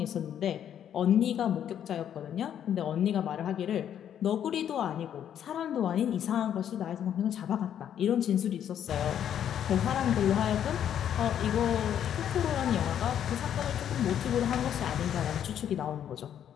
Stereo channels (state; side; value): quieter; right; 9.7 dB